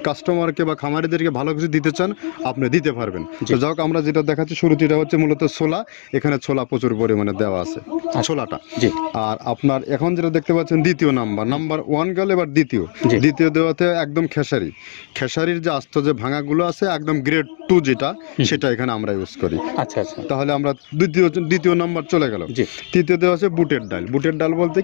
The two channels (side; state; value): right; silent; digital silence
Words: কাস্টমারকে বা খামারিদেরকে ভালো কিছু দিতে চান আপনি দিতে পারবেন। তো যাক, আমরা যেটা দেখাচ্ছি শুরুতে এটা হচ্ছে মূলত ছোলা। এখানে ছোলা প্রচুর পরিমাণে দেওয়া আছে, ছোলাটা। আর আপনার এখন যেটা দেখতে পাচ্ছেন দ্বিতীয় নাম্বার 1 গেল, এবার দ্বিতীয় দেওয়াতে একদম খেসারির যে আস্ত যে ভাঙাগুলো আছে একদম গ্রেড 2 যেটা, সেটা এখানে আমরা ইউজ করি। আচ্ছা, তাহলে আমরা দ্বিতীয় নাম্বার চলে গেল। তৃতীয় দেওয়া আছে বুটের ডাল বলতে